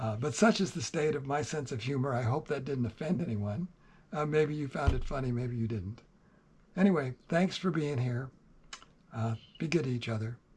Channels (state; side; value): identical; both; correlation 1.00